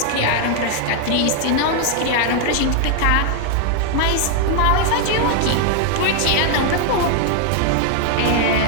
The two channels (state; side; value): different; both; correlation 0.00